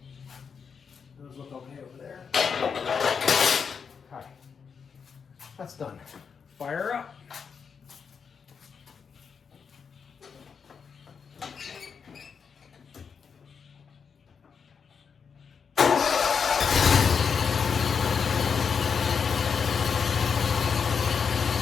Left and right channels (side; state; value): right; quieter; 6.2 dB